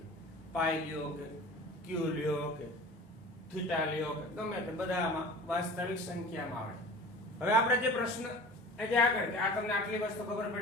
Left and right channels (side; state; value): both; normal; correlation 0.40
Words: પાઈ લ્યો કે ક્યુ લ્યો કે થીટા લ્યો કે ગમે તે બધા આમાં વાસ્તવિક સંખ્યામાં આવે. હવે આપણે જે પ્રશ્ન જે આગળ કે આ તમને આટલી વસ્તુ ખબર